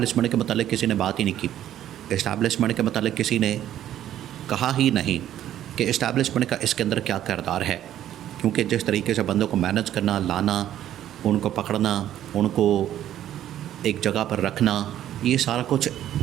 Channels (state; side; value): quieter; left; 11.8 dB